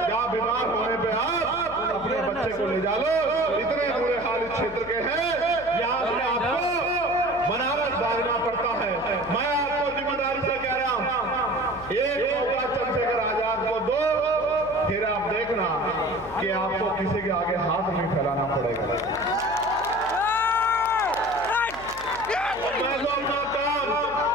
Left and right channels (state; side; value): noise; left; hum, 18 dB below the sound